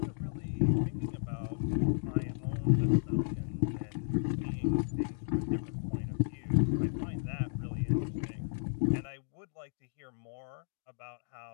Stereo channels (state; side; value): silent; right; digital silence